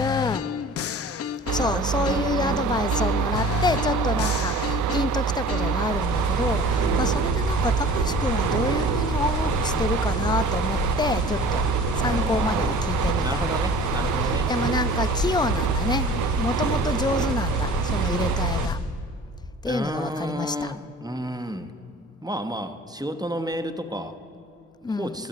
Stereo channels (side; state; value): both; normal; correlation 0.45